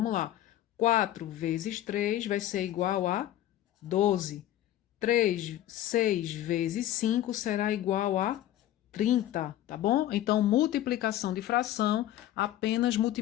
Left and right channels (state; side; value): quieter; right; 13.0 dB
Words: lá. 4 vezes 3 vai ser igual a 12. 6 vezes 5 será igual a 30, tá bom? Então, multiplicação de fração apenas